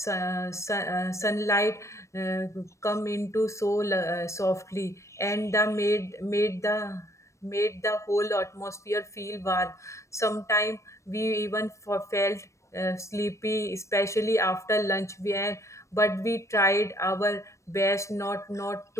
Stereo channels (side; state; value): right; late; 0.15 ms